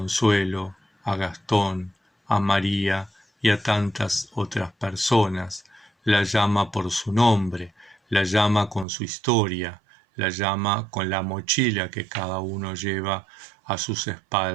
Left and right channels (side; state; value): left; drops out; at 8.8 s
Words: a Gastón, a María y a tantas otras personas. La llama por su nombre, la llama con su historia, la llama con la mochila que cada uno lleva a sus